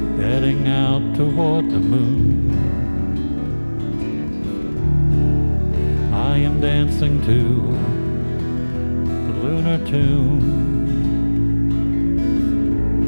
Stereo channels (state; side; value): inverted; both; correlation -1.00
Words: heading out toward the moon. I am dancing to the lunar tune.